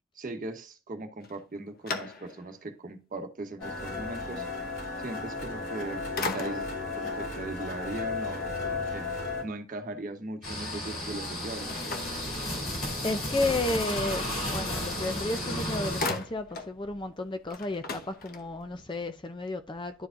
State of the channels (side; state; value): both; normal; correlation 0.40